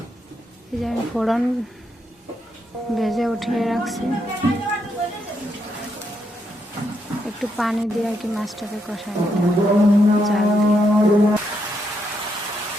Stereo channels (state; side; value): normal; both; correlation 0.79